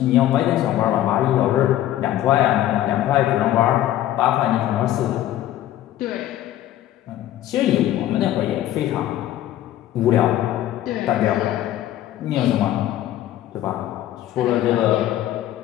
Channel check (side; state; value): right; quieter; 13.0 dB